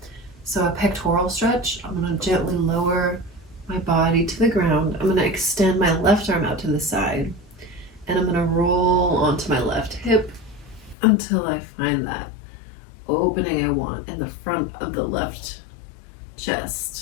So a pectoral stretch. I'm going to gently lower my body to the ground. I'm going to extend my left arm out to the side. And I'm going to roll onto my left hip until I find that opening I want in the front of the left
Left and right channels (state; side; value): drops out; right; at 11.0 s